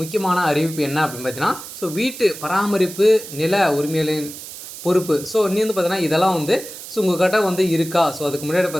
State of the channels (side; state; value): right; noise; hiss, 12 dB below the sound